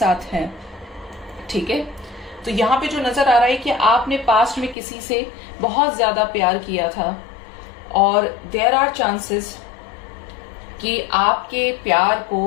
हैं। ठीक है, तो यहाँ पे जो नजर आ रहा है कि आपने पास्ट में किसी से बहुत ज्यादा प्यार किया था, और देयर आर चांसेस कि आपके प्यार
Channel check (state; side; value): drops out; right; at 4.8 s